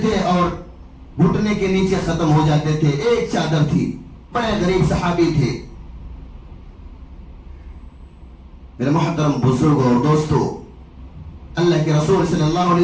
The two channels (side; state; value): both; identical; correlation 1.00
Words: تھے اور گھٹنے کے نیچے ختم ہو جاتے تھے، ایک چادر تھی، بڑے غریب صحابی تھے۔ میرے محترم بزرگ اور دوستو، اللہ کے رسول صلی اللہ